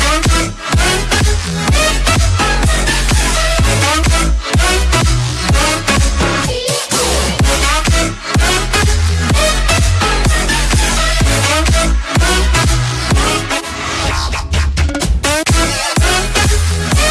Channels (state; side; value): identical; both; correlation 1.00